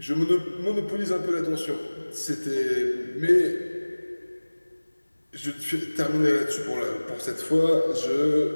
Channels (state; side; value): inverted; both; correlation -1.00